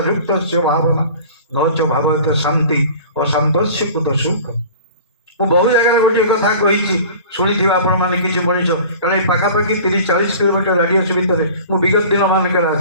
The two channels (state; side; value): inverted; both; correlation -0.42